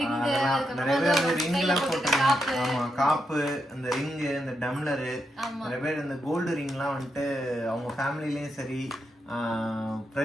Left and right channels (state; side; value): normal; both; correlation 0.83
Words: ரிங், நிறைய பேர் ரிங்லாம் போட்டுருக்காங்க. ஆமா, காப்பு, அந்த ரிங், இந்த டம்ளர், நிறைய பேர் இந்த கோல்டு ரிங்லாம் வந்துட்டு அவங்க ஃபேமிலிலயும் சரி,